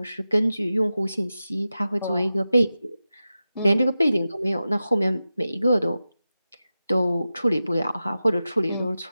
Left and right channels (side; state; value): both; inverted; correlation -0.93